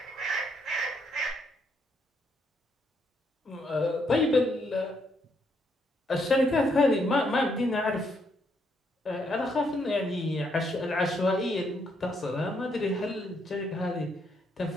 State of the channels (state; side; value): normal; both; correlation 0.74